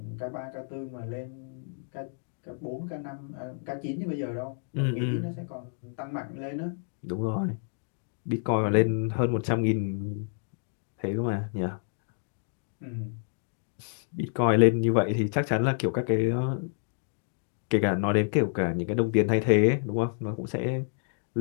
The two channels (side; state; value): right; silent; digital silence